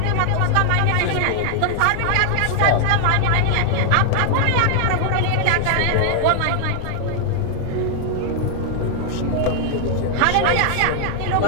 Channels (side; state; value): both; different; correlation 0.00